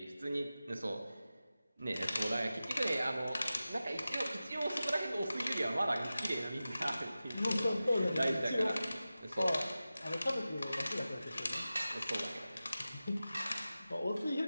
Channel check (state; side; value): inverted; both; correlation -0.95